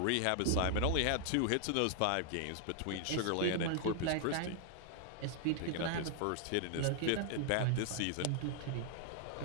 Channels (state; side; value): different; both; correlation 0.00